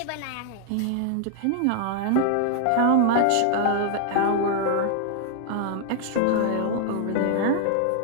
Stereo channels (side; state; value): both; different; correlation -0.01